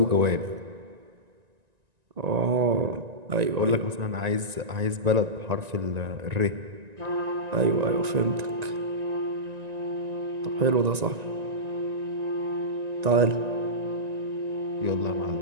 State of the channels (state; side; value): late; left; 1.9 ms